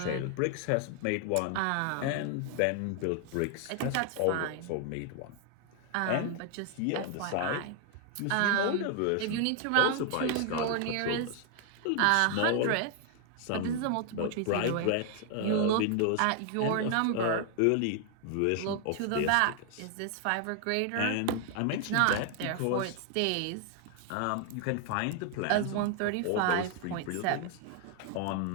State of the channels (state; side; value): different; both; correlation 0.00